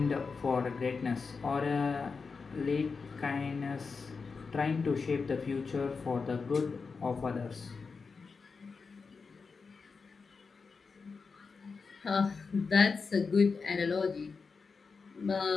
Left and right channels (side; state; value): right; quieter; 4.8 dB